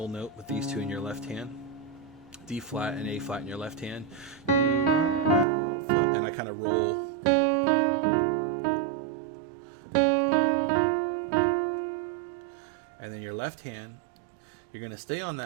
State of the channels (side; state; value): left; drops out; at 5.5 s